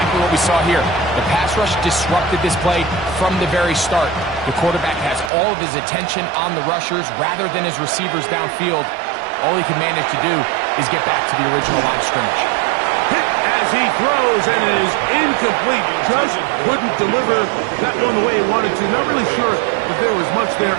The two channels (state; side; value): drops out; left; at 5.3 s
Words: what we saw here. The pass rush disrupted this play from the very start. The quarterback has all of his attention on the rushers rather than his receivers downfield. All he can manage to do is get back to the original line of scrimmage. Hit as he throws, and it is incomplete. Just couldn't deliver that one the way he wanted to. Not really sure if there was much there